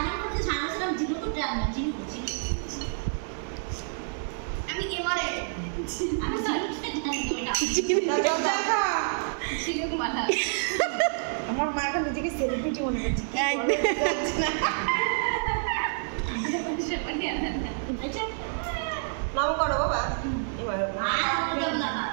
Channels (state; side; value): silent; left; digital silence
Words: করতে সামনেছিলাম জিরো তো ডায়মন্ড জিরো আমি এবারে আমি জিরো মাথা আমার মা এখন নিজেকে সেলিব্রিটি মনে করছে। নাম করো বাবা। এবার